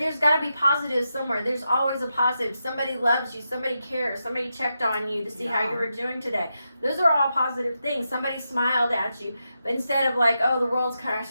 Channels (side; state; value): both; inverted; correlation -0.87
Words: got to be positives somewhere. There's always a positive. Somebody loves you. Somebody cares. Somebody checked on you to see how you were doing today. Those are all positive things. Somebody smiled at you. But instead of like, oh, the world's